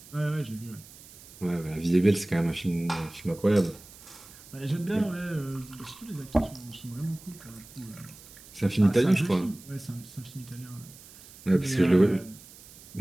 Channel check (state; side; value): noise; right; hiss, 20 dB below the sound